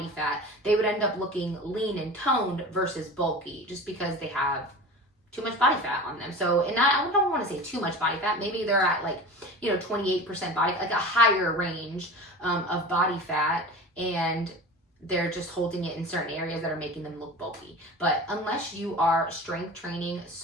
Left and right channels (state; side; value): normal; both; correlation 0.34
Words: fat, they would end up looking lean and toned versus bulky, just because they have too much body fat on them. So, and I don't want to say too much body fat. Maybe they're at like, 28% body, like a higher range of body fat, and they're just holding it in certain areas that are making them look bulky. But unless you are strength training